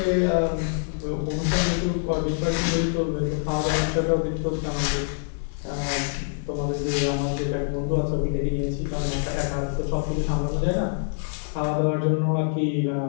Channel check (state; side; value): silent; right; 62 dB below the other